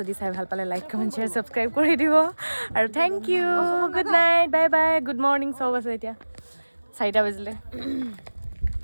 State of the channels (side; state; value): both; inverted; correlation -1.00